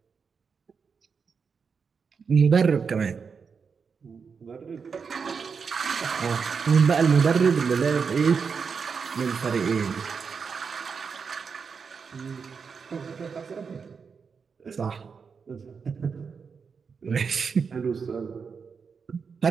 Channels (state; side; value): quieter; left; 5.8 dB